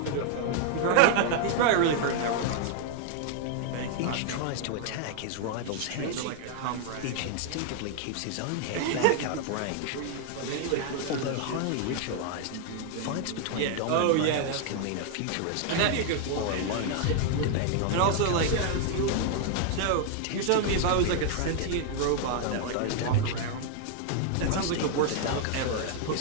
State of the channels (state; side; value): different; both; correlation 0.00